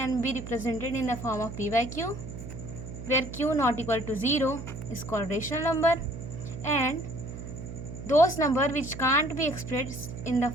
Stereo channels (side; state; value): right; noise; hum, 10 dB below the sound